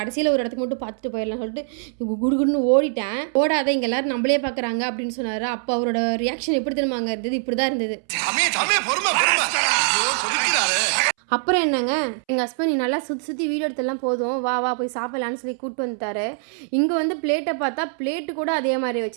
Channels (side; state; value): left; silent; 63 dB below the other